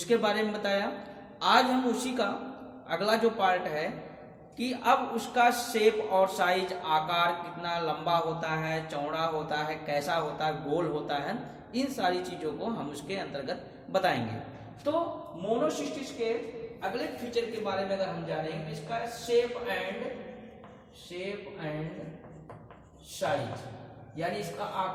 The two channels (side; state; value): both; identical; correlation 1.00